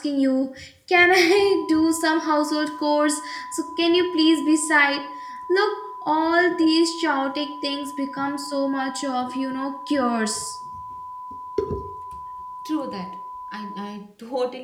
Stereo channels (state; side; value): identical; both; correlation 1.00